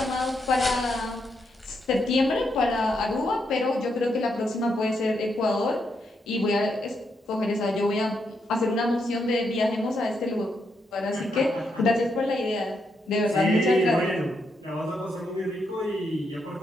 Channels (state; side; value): normal; both; correlation 0.80